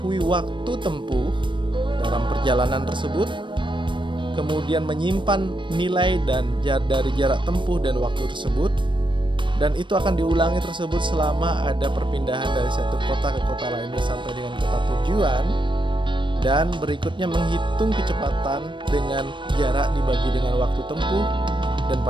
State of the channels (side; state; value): left; late; 0.23 ms